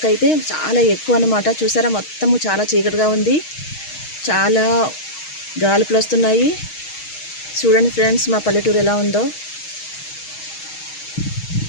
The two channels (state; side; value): late; right; 6.4 ms